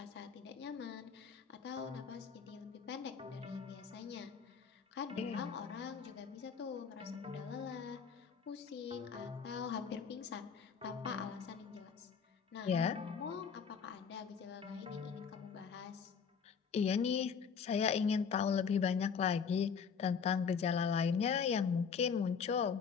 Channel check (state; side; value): quieter; right; 6.3 dB